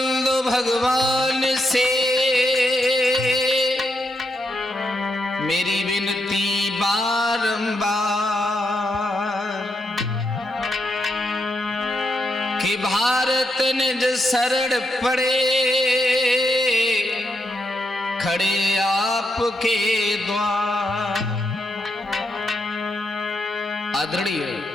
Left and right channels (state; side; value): normal; both; correlation 0.82